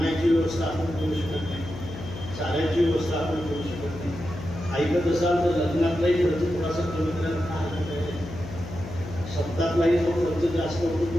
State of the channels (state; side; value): noise; left; hum, 11 dB below the sound